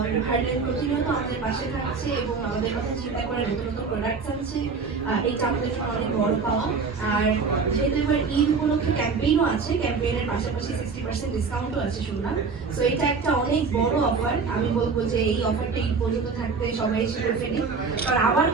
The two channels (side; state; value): left; quieter; 4.9 dB